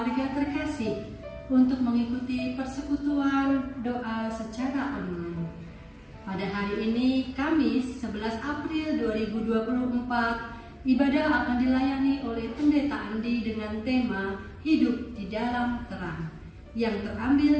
terkasih untuk mengikuti persekutuan doa secara online. Pada hari ini, Kamis 11 April 2024, ibadah akan dilayani oleh Pendeta Andi dengan tema Hidup di Dalam Terang, yang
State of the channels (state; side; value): identical; both; correlation 1.00